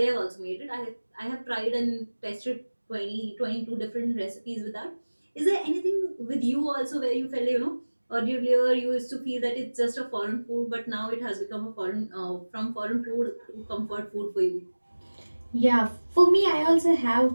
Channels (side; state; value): both; inverted; correlation -1.00